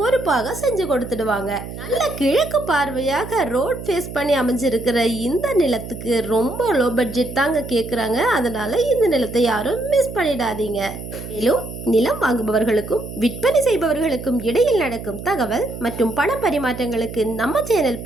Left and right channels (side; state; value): right; noise; hum, 10 dB below the sound